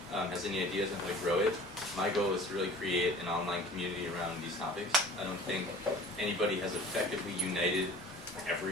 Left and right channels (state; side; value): normal; both; correlation 0.45